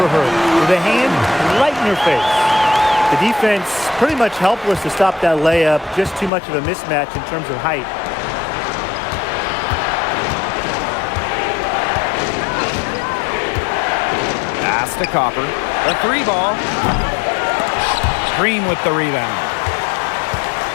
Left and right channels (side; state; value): right; drops out; at 6.3 s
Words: her with a hand right in her face. The defense pretty much helpless to stop that layup. Just too much of a mismatch in terms of height. Pass to Copper. The three ball. Green with the rebound.